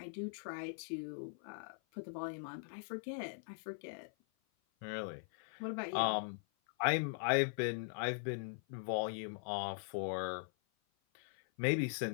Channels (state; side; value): silent; right; 51 dB below the other